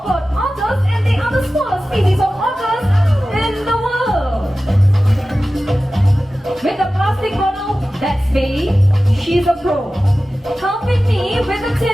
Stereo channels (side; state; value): both; normal; correlation 0.95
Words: otters, and they are the smallest species of otters in the world. With the plastic bottle, that's Bailey. She's a pro. Helping me with the